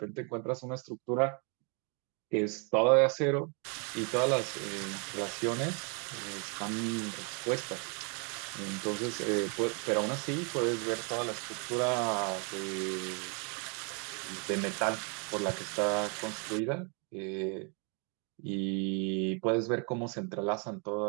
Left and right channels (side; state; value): left; quieter; 36.9 dB